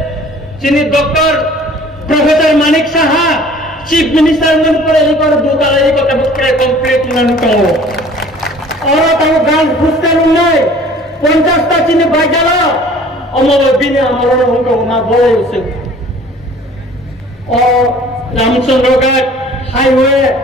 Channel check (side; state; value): both; normal; correlation 0.50